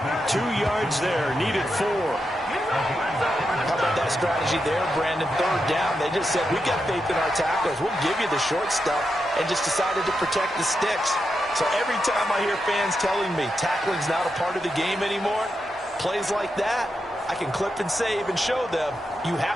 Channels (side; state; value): both; normal; correlation 0.86